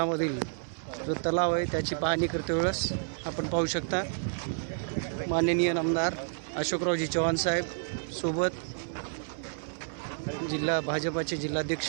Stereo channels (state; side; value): silent; left; 58 dB below the other